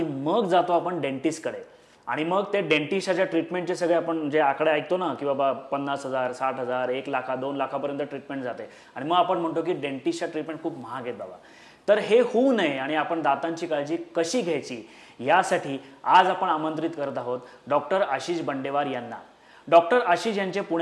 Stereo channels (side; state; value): both; identical; correlation 1.00